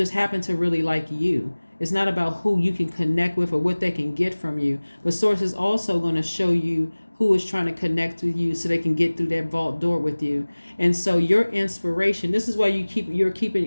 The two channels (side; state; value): both; inverted; correlation -1.00